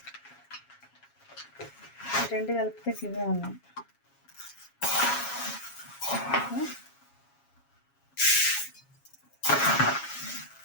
రెండు కలిపితే ఇవే ఉన్నాయి.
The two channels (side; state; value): right; late; 7.3 ms